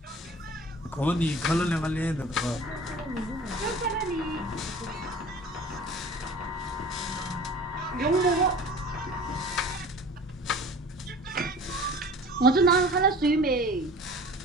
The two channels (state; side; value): normal; both; correlation 0.43